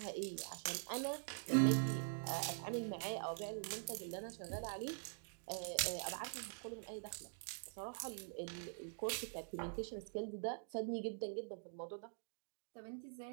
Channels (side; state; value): left; silent; digital silence